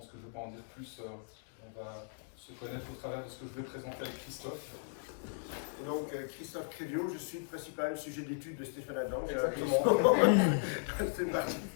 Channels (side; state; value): right; silent; digital silence